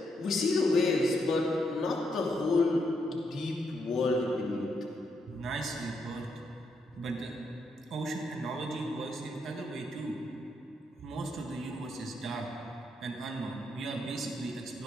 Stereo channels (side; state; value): both; normal; correlation 0.79